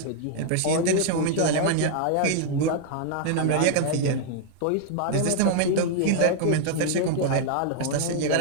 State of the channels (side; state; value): both; different; correlation 0.00